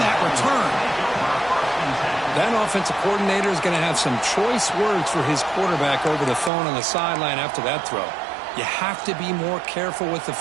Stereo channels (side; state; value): left; drops out; at 6.5 s